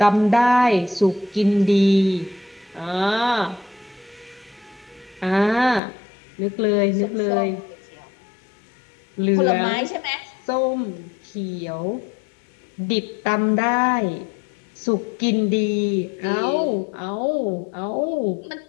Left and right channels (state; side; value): drops out; right; at 5.8 s